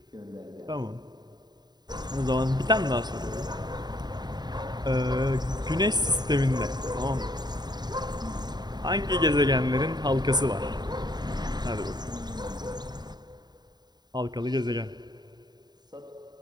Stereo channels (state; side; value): late; left; 0.20 ms